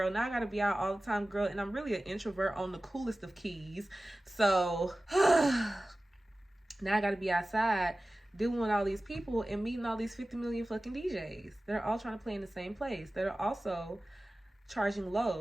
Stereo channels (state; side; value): normal; both; correlation 0.96